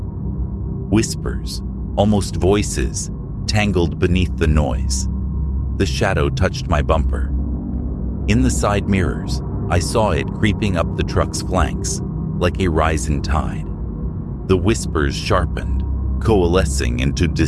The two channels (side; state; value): both; identical; correlation 1.00